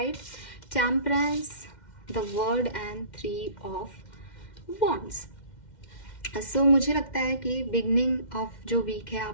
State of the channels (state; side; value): late; right; 2.1 ms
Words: temperance, the world and 3 of wands. So मुझे लगता है कि बिगनिंग ऑफ जो वीक है